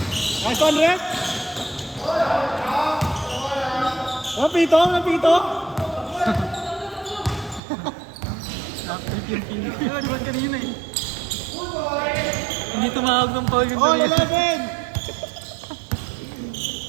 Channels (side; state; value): left; drops out; at 7.6 s